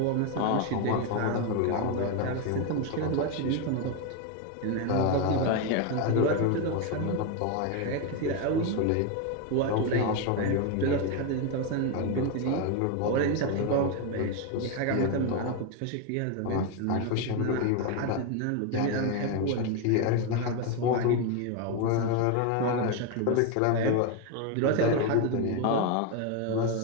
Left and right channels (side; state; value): both; different; correlation 0.02